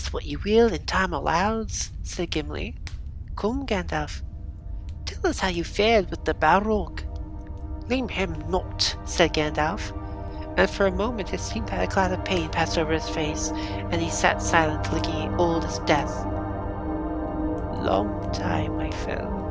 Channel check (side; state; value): both; identical; correlation 1.00